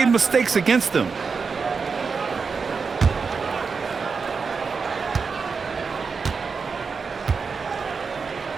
mistakes against them.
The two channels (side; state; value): left; quieter; 5.2 dB